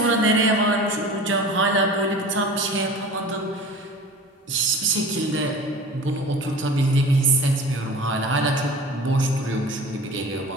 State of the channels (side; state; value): both; normal; correlation 0.38